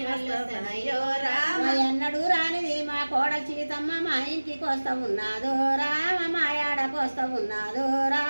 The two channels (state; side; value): inverted; both; correlation -1.00